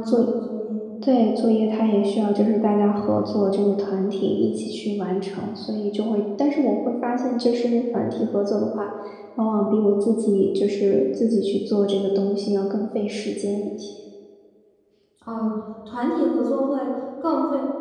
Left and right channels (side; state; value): both; identical; correlation 1.00